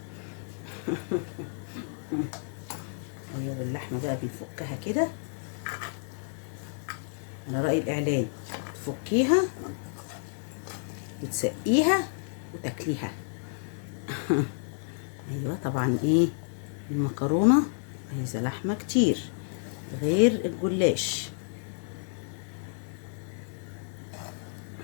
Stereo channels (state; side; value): silent; right; 58 dB below the other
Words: ايوه اللحمه بقى بنفكها كده على رأي الاعلان. تفكيها وتسقيها وتاكليها. ايوه طبعا ايه المكرونه عايزه لحمه كتير غير الجلاش.